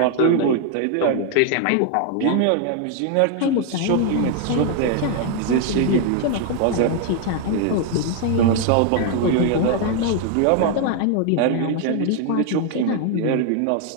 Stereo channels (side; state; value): both; different; correlation 0.00